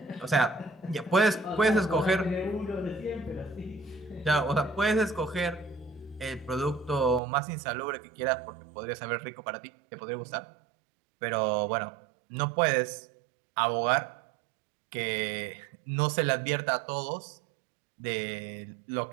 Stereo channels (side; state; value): left; drops out; at 7.2 s